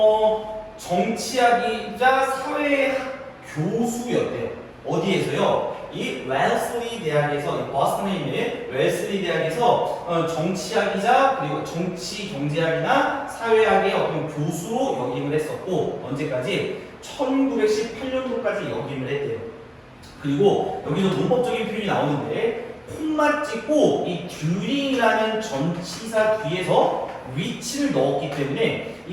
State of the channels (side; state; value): both; identical; correlation 1.00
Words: 정치학이자 사회학 교수였대요. 어디에서요? 이 웰슬리 대학에서, 이 버스턴에 있는 웰슬리 대학에서 정치학이자 그리고 정치 경제학이나 사회학의 어떤 교수로 역임을 했었고, 언제까지? 1918년도까지 역임을 했대요. 그리고 여기서 문법적인 표현이 나오는데, 콤마 찍고 이 듀링이라는 전치사 뒤에서 위치를 넣었기 때문에 이